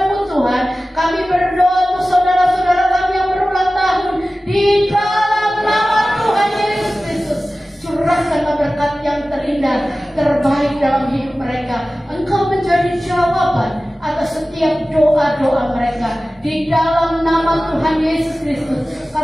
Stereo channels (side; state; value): both; normal; correlation 0.96